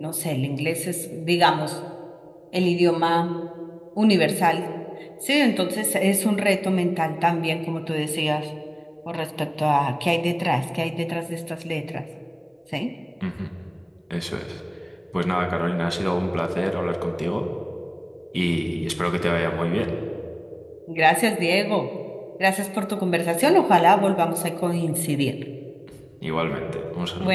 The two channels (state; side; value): identical; both; correlation 1.00